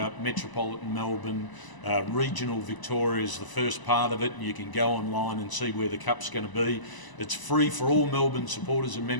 metropolitan Melbourne, regional Victoria is the first part of it, and you can go online and see where the Cup's going to be. It's free for all Melbourne supporters and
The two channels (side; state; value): right; late; 1.0 ms